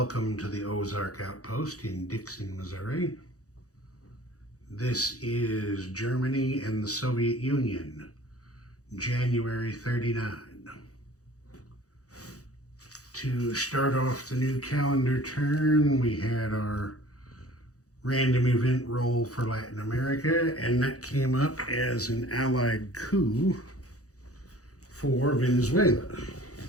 to the Ozark Outpost in Dixon, Missouri. This is Germany and the Soviet Union, January 39. To start off the new calendar turn, we had our random event roll for Latin America, and that came up as an Allied coup for Venezuela.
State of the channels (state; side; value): late; right; 0.66 ms